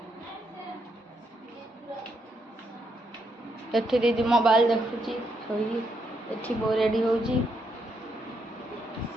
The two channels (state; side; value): normal; both; correlation 0.78